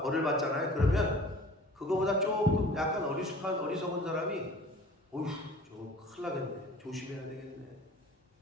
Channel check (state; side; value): normal; both; correlation 0.46